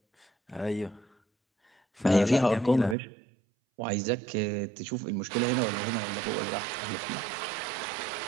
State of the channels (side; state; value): left; drops out; at 3.0 s